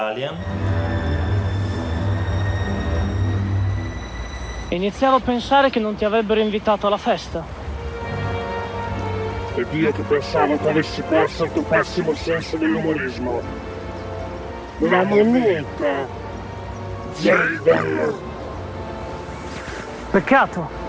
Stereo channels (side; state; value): both; identical; correlation 1.00